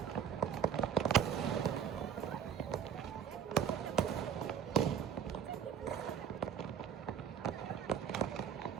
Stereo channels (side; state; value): left; quieter; 8.0 dB